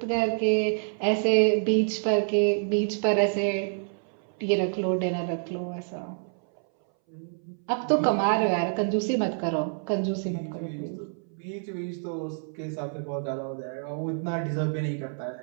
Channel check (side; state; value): left; silent; 60 dB below the other